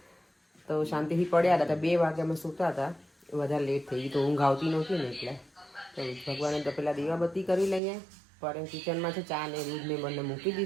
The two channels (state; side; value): drops out; left; at 7.8 s